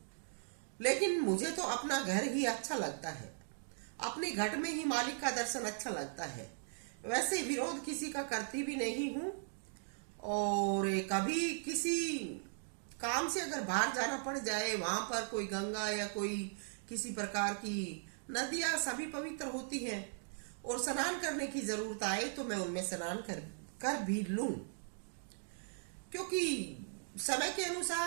लेकिन मुझे तो अपना घर ही अच्छा लगता है, अपने घट में ही मालिक का दर्शन अच्छा लगता है। वैसे विरोध किसी का करती भी नहीं हूं, और कभी किसी काम से अगर बाहर जाना पड़ जाए, वहां पर कोई गंगा या कोई किसी प्रकार की नदियां सभी पवित्र होती हैं, और स्नान करने की जरूरत आए तो मैं उनमें स्नान कर भी लूं, क्योंकि समय के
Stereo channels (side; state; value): left; silent; digital silence